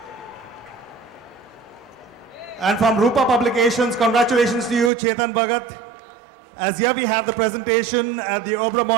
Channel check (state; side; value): drops out; left; at 4.9 s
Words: And from Rupa Publications, congratulations to you, Chetan Bhagat. As here we have the presentation at the